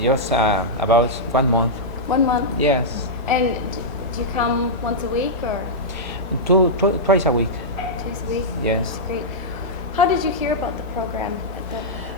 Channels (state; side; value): normal; both; correlation -0.09